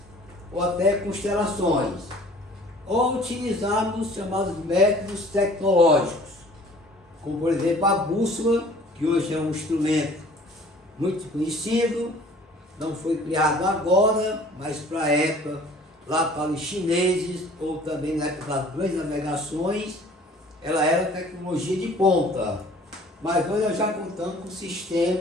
ou até constelações. Ou utilizarmos os chamados métodos tecnológicos, como por exemplo a bússola, que hoje é um instrumento muito conhecido, não foi criado agora, mas para a época, lá para os chineses, ou também na época das grandes navegações, ela era tecnologia de ponta. Mas hoje nós já contamos com um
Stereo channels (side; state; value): both; normal; correlation 0.51